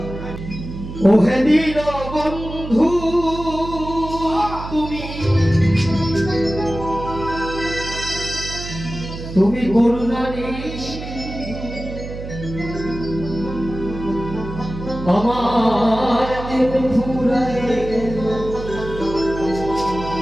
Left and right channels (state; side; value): noise; right; hum, 9 dB below the sound